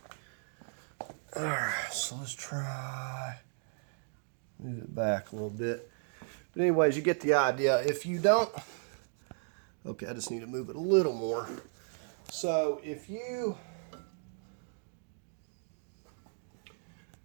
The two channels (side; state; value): left; silent; digital silence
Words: Alright, so let's try move it back a little bit. But anyways, you get the idea. If you don't, okay, I just need to move it a little more. So if you,